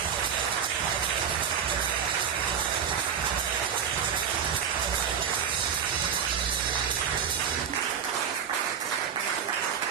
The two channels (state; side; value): quieter; left; 7.7 dB